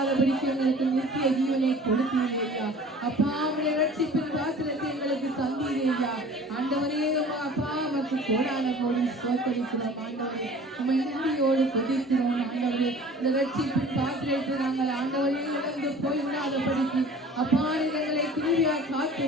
எங்களுக்கு நித்திய ஜீவனை கொடுத்தீர்கள் ஐயா. அப்பா உடைய ரட்சிப்பின் பாத்திரத்தை எங்களுக்கு தந்தீர்கள் ஐயா. ஆண்டவரே அப்பா உமக்கு கோடான கோடி ஸ்தோத்திரிக்கிறோம் ஆண்டவரே. உம்மை நன்றியோடு துதிக்கிறோம் ஆண்டவரே. இந்த ரட்சிப்பின் பாத்திரத்தை நாங்கள் ஆண்டவரே இழந்து போய்விடாதபடிக்கு அப்பா எங்களை கிருபையாய் காத்து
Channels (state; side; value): normal; both; correlation 0.46